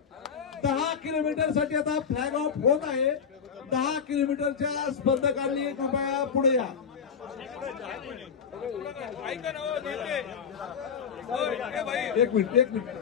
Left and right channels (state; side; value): quieter; right; 6.7 dB